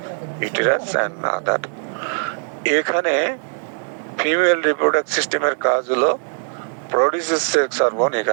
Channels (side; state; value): left; silent; 65 dB below the other